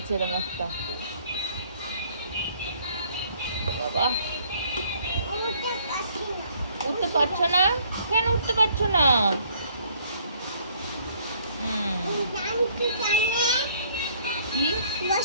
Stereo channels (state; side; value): inverted; both; correlation -0.61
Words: এরকম একটা। বাবা উঠতে পারছো না কেন? উঠতে পারছো না? কি